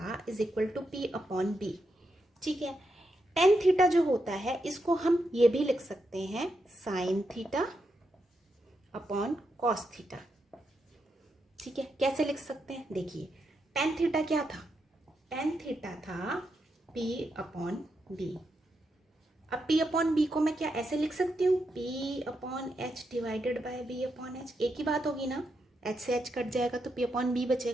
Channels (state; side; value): normal; both; correlation 0.83